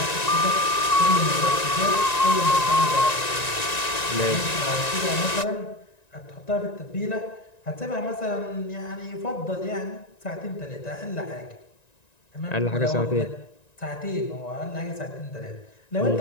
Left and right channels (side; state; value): right; late; 1.9 ms